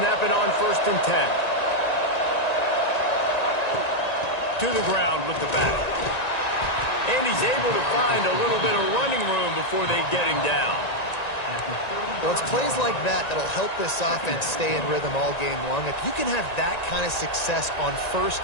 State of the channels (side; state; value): right; late; 1.9 ms